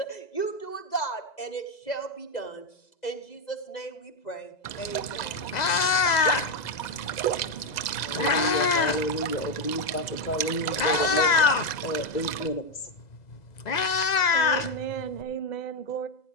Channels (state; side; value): late; right; 2.0 ms